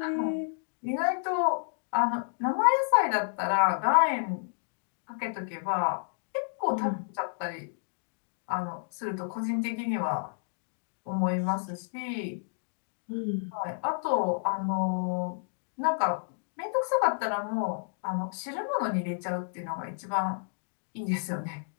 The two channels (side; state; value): right; silent; digital silence